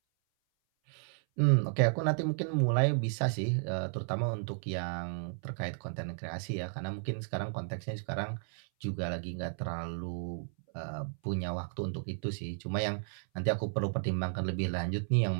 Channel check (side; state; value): left; silent; 56 dB below the other